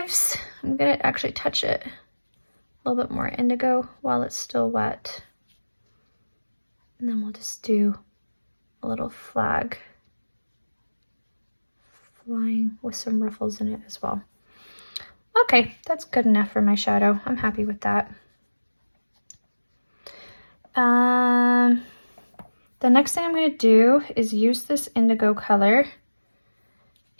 I'm going to actually touch it a little bit more indigo while it's still wet. And then we'll just do a little flag flying with some ruffles in it as well. Okay, that's good enough for my shadow. I'm happy with that. The next thing I'm going to do is use this indigo color,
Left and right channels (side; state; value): both; inverted; correlation -1.00